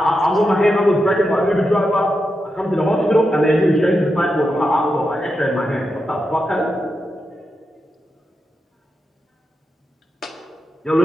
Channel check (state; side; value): normal; both; correlation 0.87